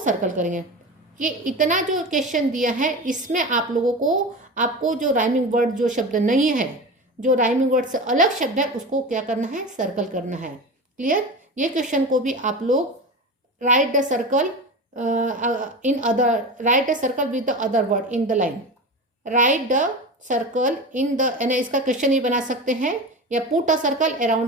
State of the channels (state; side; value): normal; both; correlation 0.27